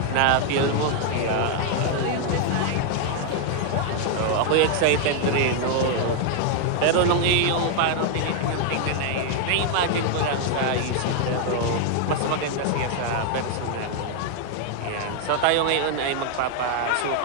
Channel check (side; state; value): both; different; correlation 0.00